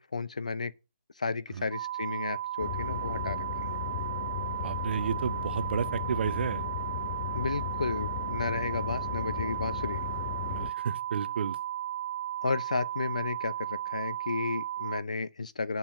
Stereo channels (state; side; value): inverted; both; correlation -0.59